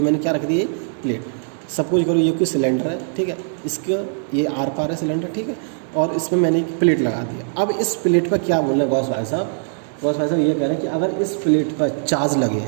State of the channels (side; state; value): left; silent; digital silence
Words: मैंने क्या रख दी है, प्लेट। सपोज करो ये कोई सिलेंडर है, ठीक है, इसका ये आर पार है सिलेंडर, ठीक है, और इसमें मैंने एक प्लेट लगा दिया। अब इस प्लेट पर क्या बोल रहे हैं गौस भाई साहब, गौस भाई साहब ये कह रहे हैं कि अगर इस प्लेट पर चार्ज लगे